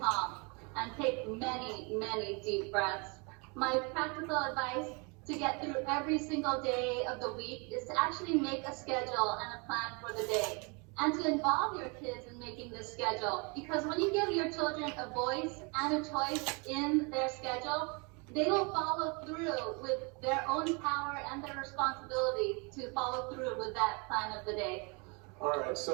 calm, and take many, many deep breaths. My practical advice to get through every single day of the week is to actually make a schedule and a plan for the day, and to involve your kids in making this schedule. Because when you give your children a voice and a choice in their schedule, they will follow through with their own power and their responsibility to follow through with that plan of the day. All right,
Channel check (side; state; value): left; quieter; 32.0 dB